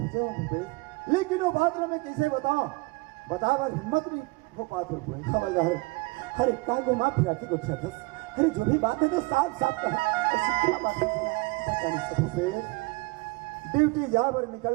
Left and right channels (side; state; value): left; quieter; 26.0 dB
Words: हूँ भूपेश। लेकिन वो बात मैं कैसे बताऊं बता बार हिम्मत नहीं हो पाते हुए हवलदार। अरे का घुमा फिरा के गुस्सा था। अरे जो भी बात है तो साफ साफ कहा। ऐसी क्या बात है बता नहीं सकते। ड्यूटी यहाँ पर निकल